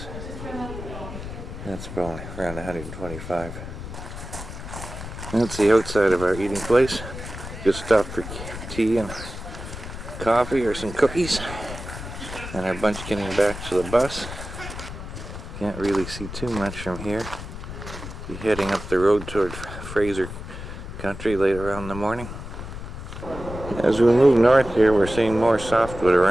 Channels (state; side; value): noise; left; rumble, 10 dB below the sound